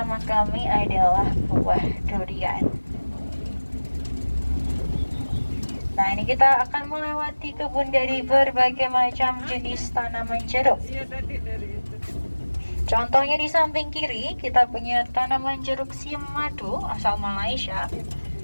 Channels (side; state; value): both; inverted; correlation -1.00